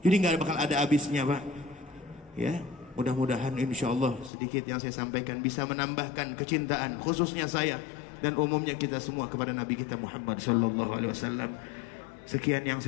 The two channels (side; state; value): right; drops out; at 4.3 s